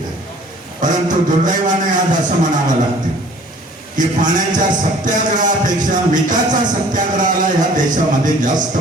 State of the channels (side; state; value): both; normal; correlation 0.52